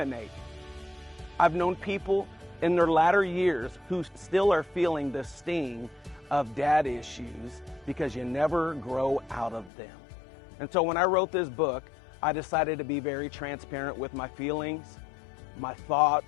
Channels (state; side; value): drops out; right; at 9.7 s